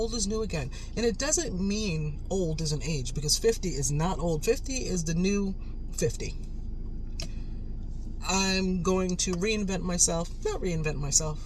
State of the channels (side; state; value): both; identical; correlation 1.00